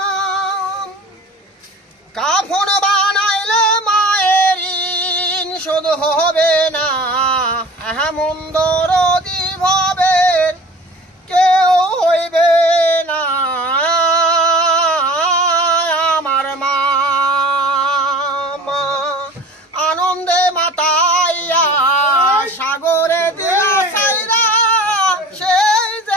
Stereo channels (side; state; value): both; normal; correlation 0.42